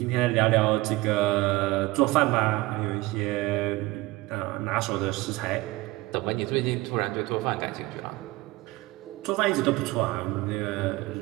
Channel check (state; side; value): quieter; left; 20.6 dB